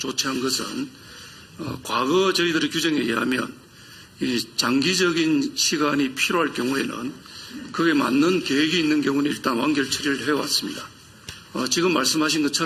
것은 과거 저희들의 규정에 의하면 이 장기적인 시간이 필요할 경우에는 그에 맞는 계획이 있는 경우는 일단 완결 처리를 해왔습니다. 지금 말씀하신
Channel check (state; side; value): identical; both; correlation 1.00